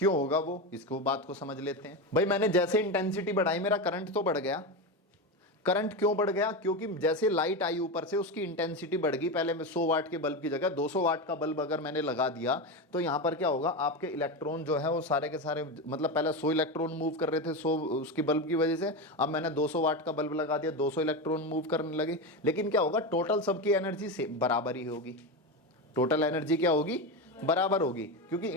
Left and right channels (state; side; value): normal; both; correlation 0.17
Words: क्यों होगा वो, इसको बात को समझ लेते हैं। भाई मैंने जैसे इंटेंसिटी बढ़ाई मेरा करंट तो बढ़ गया। करंट क्यों बढ़ गया? क्योंकि जैसे लाइट आई ऊपर से उसकी इंटेंसिटी बढ़ गई। पहले मैं 100 वाट के बल्ब की जगह 200 वाट का बल्ब अगर मैंने लगा दिया तो यहाँ पर क्या होगा, आपके इलेक्ट्रॉन जो है वो सारे के सारे, मतलब पहले 100 इलेक्ट्रॉन मूव कर रहे थे 100 उसकी बल्ब की वजह से, अब मैंने 200 वाट का बल्ब लगा दिया 200 इलेक्ट्रॉन मूव करने लगे। लेकिन क्या होगा, टोटल सबकी एनर्जी से बराबर ही होगी। टोटल एनर्जी क्या होगी? बराबर होगी, क्योंकि